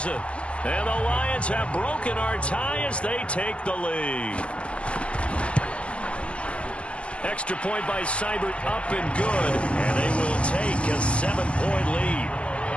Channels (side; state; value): right; late; 0.057 ms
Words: And the Lions have broken our tie as they take the lead. Extra point by Seibert, up and good. And they will take a 7-point lead.